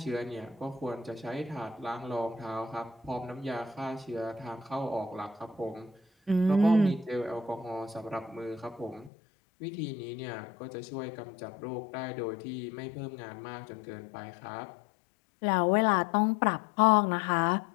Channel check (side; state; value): right; drops out; at 9.1 s